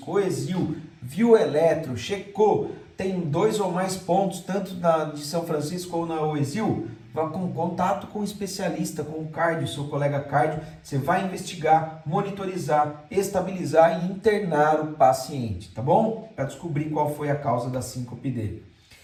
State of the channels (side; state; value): both; identical; correlation 1.00